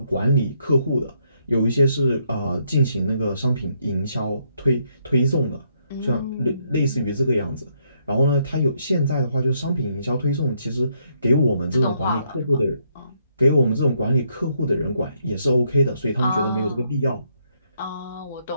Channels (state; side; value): inverted; both; correlation -0.74